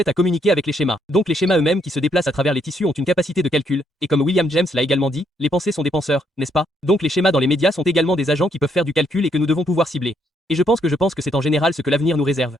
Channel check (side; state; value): both; normal; correlation 0.73